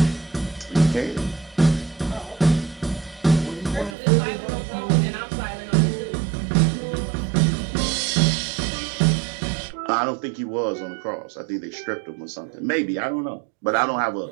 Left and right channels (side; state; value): left; drops out; at 4.0 s